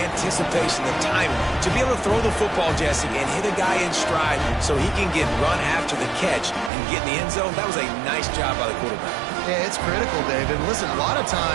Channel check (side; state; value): left; drops out; at 6.7 s